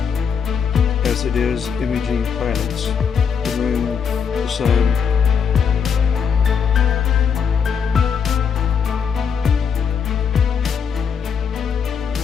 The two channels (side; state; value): right; quieter; 6.7 dB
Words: as it is imaging planets, the moon, the sun.